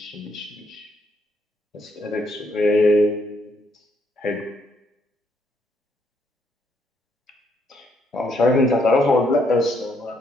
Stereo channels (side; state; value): both; normal; correlation 0.72